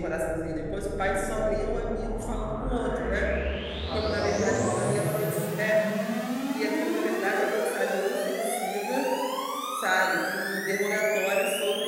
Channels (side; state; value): both; identical; correlation 1.00